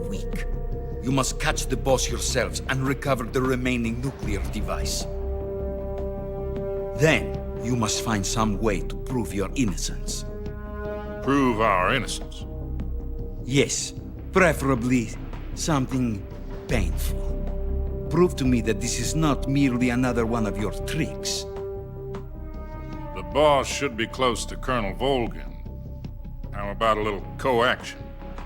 week. You must catch the boss yourselves and recover the remaining nuclear device. Then, you must find some way to prove your innocence. Prove our innocence. Yes, preferably something painful. Prove to me that this is not merely another one of your tricks. The boss should be close to Colonel Volgin. How about a little coaction?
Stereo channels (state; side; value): identical; both; correlation 1.00